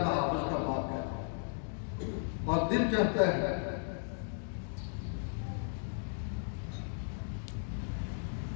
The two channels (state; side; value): silent; right; digital silence